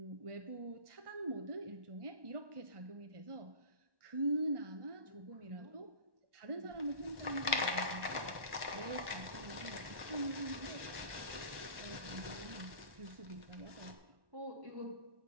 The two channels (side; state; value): left; late; 1.1 ms